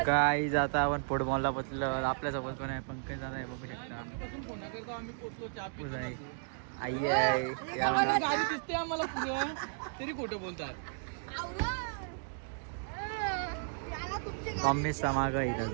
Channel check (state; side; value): silent; left; digital silence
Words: काय आता आपण फुटबॉलला पोचलो. आपल्यासोबत पण आहे पंकज दादा आहे बघू शकता. आई आहे, गाडी दिसते आम्हाला पुढं तरी खोटं बोलतात. मम्मी समाग आहे